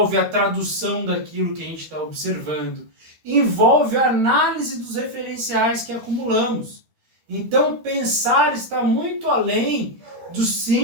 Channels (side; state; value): left; late; 13 ms